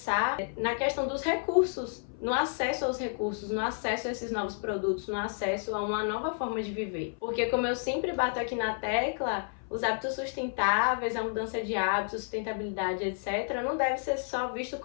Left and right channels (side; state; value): right; silent; 57 dB below the other